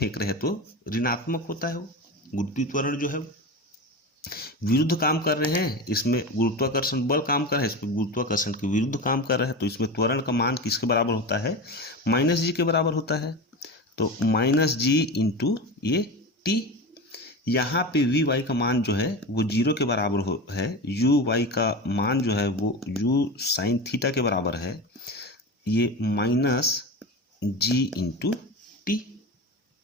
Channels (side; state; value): both; normal; correlation 0.26